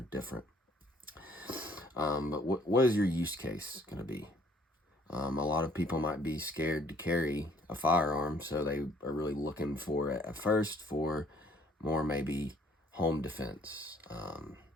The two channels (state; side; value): normal; both; correlation 0.61